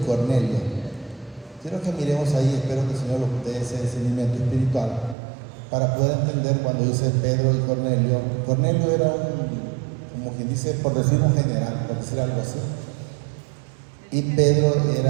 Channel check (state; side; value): drops out; left; at 5.2 s